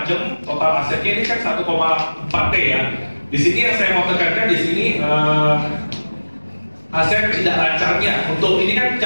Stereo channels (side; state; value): both; inverted; correlation -1.00